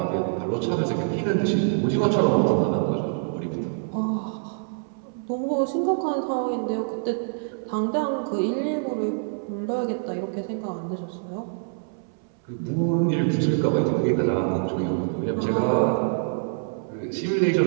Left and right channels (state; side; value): silent; left; 61 dB below the other